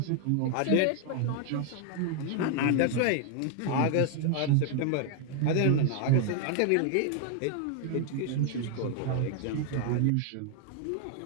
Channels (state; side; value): different; both; correlation 0.00